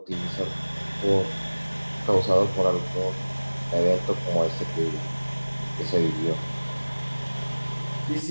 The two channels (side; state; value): both; inverted; correlation -1.00